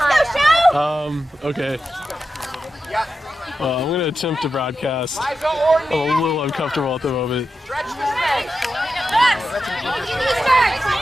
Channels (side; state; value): both; normal; correlation 0.90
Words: show. Okay. I'm going to attempt to broadcast. I'm a little uncomfortable at the moment.